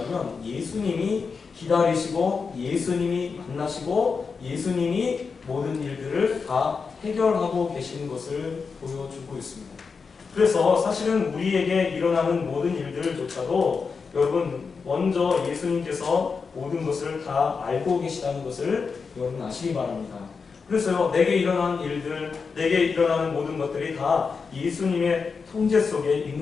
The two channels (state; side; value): quieter; right; 5.2 dB